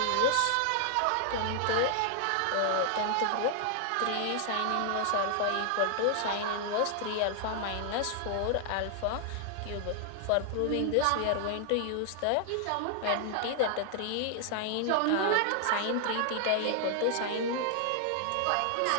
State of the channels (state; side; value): different; both; correlation 0.00